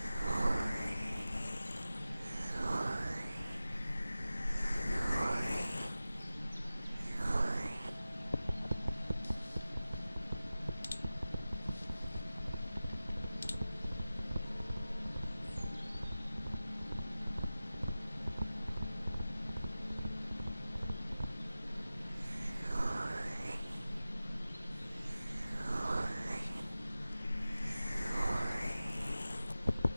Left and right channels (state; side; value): inverted; both; correlation -0.96